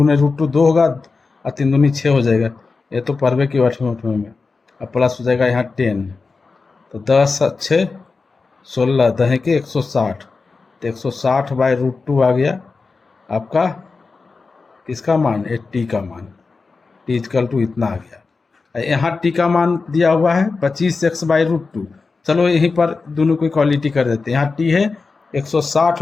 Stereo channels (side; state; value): right; quieter; 4.3 dB